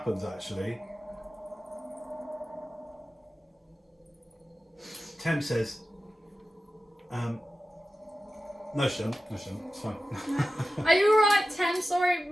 actually, Tem says, no, she don't. No, she don't. It's fine. Are you alright, Tem? Sorry,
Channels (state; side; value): normal; both; correlation 0.94